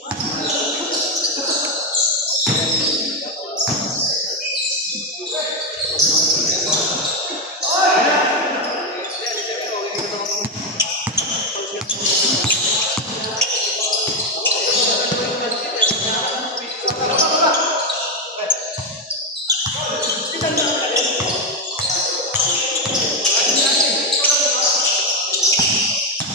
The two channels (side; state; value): both; normal; correlation 0.07